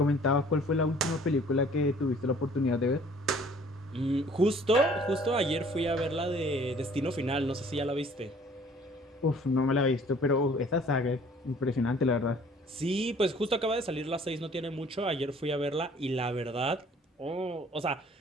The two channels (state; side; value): normal; both; correlation 0.54